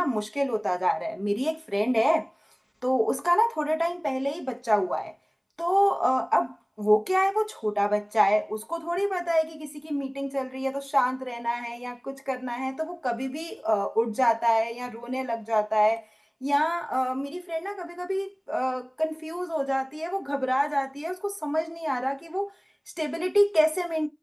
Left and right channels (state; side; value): identical; both; correlation 1.00